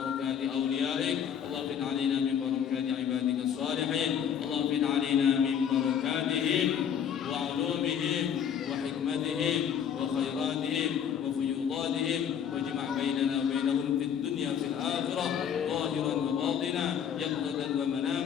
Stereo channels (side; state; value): right; quieter; 8.4 dB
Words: أوليائك اللهم انفذ علينا من بركات عبادك الصالحين اللهم انفذ علينا من بركاتهم وعلومهم وحكمتهم وخيراتهم وفيوضاتهم واجمع بيننا وبينهم في الدنيا في الآخرة ظاهرا وباطنا يقظة